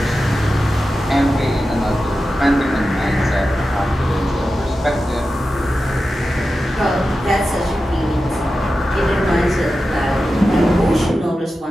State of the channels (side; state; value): both; normal; correlation 0.92